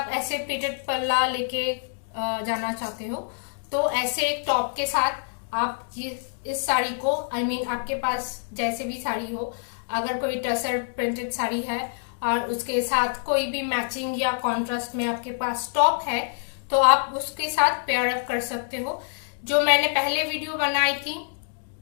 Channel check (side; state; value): right; silent; digital silence